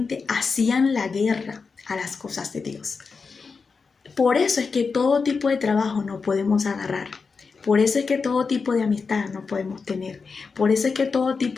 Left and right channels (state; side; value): quieter; right; 4.9 dB